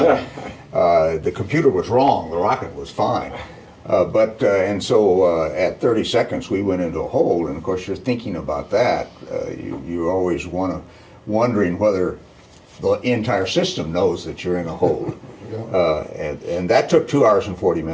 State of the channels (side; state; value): both; identical; correlation 1.00